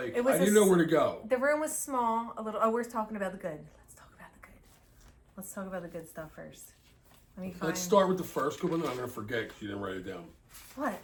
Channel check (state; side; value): identical; both; correlation 1.00